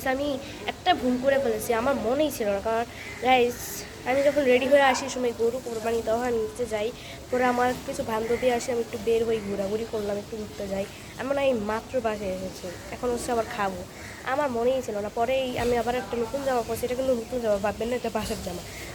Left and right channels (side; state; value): both; identical; correlation 1.00